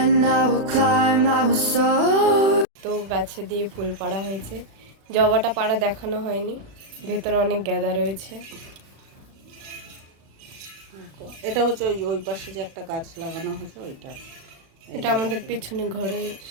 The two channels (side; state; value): left; late; 36 ms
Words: I will climb, I will soar. তো গাছে দিয়ে ফুল পাড়া হয়েছে, জবাটা পাড়া দেখানো হয়নি, ভেতরে অনেক গাঁদা রয়েছে। এটা হচ্ছে ওই পাশে যে একটা গাছ লাগানো হয়েছে ওইটা, এটা আমাদের পেছনে ঘরের